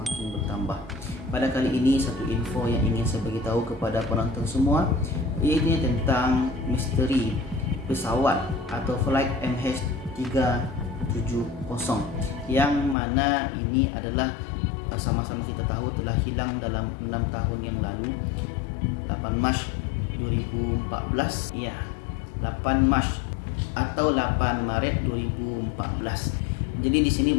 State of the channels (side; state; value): right; drops out; at 13.0 s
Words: bertambah. Pada kali ini satu info yang ingin saya beritahu kepada penonton semua, iaitu tentang misteri pesawat atau flight MH370 yang mana ini adalah sama-sama kita tahu telah hilang dalam 6 tahun yang lalu, 8 Mac 2014. Ya, 8 Mac atau 8 Maret 2014. Jadi di sini